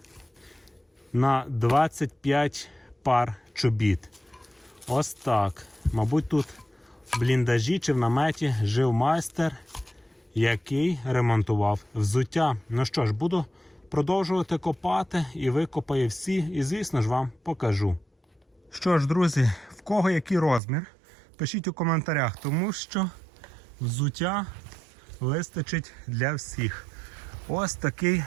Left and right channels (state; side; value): drops out; left; at 20.6 s